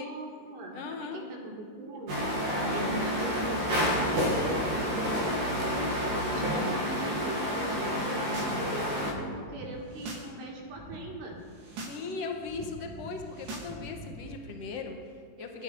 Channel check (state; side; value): late; left; 18 ms